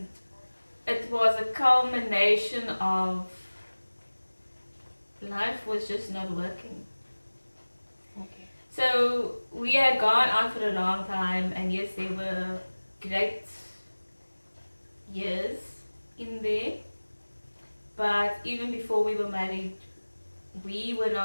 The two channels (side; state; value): both; inverted; correlation -1.00